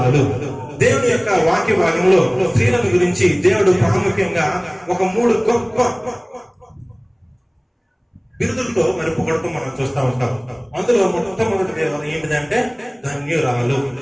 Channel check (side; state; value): both; identical; correlation 1.00